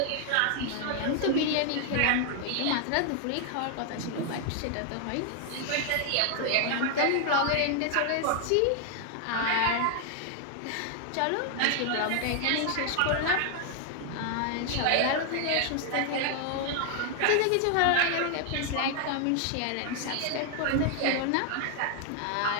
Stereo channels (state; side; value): different; both; correlation 0.00